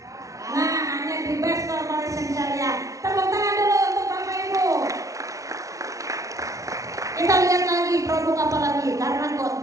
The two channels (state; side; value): late; left; 0.16 ms